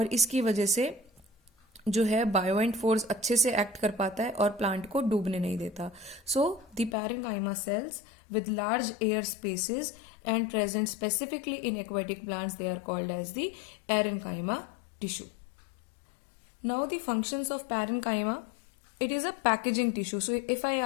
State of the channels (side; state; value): right; drops out; at 7.0 s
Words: इसकी वजह से जो है बायोएंट फोर्स अच्छे से एक्ट कर पाता है और प्लांट को डूबने नहीं देता। So the parenchyma cells with large air spaces and present specifically in aquatic plants, they are called as the parenchyma tissue. Now the functions of parenchyma, it is a packaging tissue. So if I